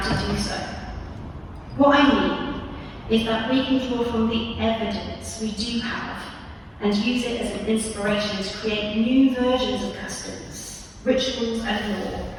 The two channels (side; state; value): both; identical; correlation 1.00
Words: do so. What I mean is that we can draw from the evidence we do have and use it as an inspiration to create new versions of customs, rituals and law